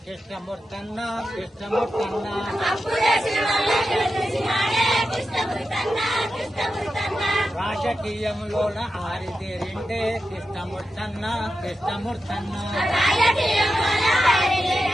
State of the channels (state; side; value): normal; both; correlation 0.90